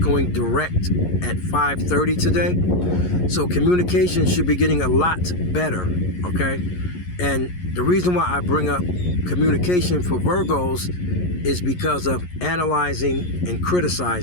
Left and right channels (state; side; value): late; right; 11 ms